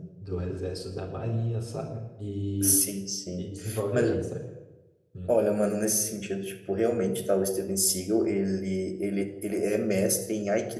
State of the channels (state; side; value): identical; both; correlation 1.00